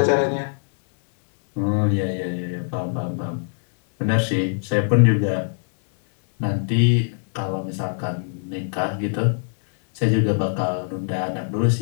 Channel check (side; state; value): right; silent; digital silence